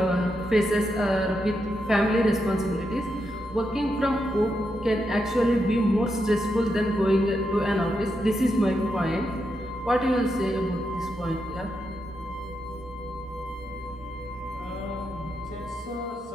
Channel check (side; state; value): both; normal; correlation 0.84